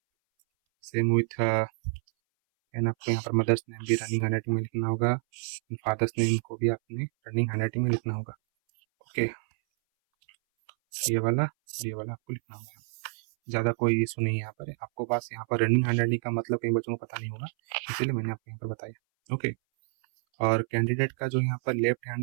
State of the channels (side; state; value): left; silent; 59 dB below the other